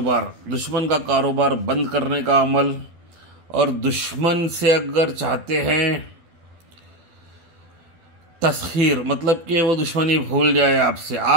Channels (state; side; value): late; left; 12 ms